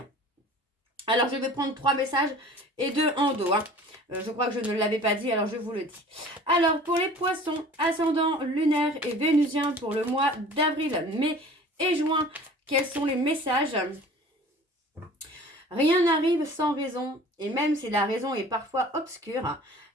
Alors je vais prendre 3 messages et 2 en dos. Je crois que je ne l'avais pas dit, alors je vous le dis. Alors pour les poissons, ascendant, lunaire et vénusien pour le mois d'avril, mai et juin, quels sont les messages ? Rien n'arrive sans raison, et même si la raison est parfois obscure,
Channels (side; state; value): both; normal; correlation 0.45